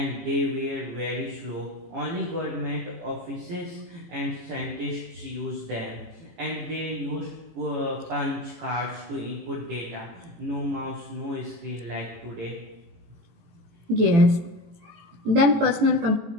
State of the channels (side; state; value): left; late; 18 ms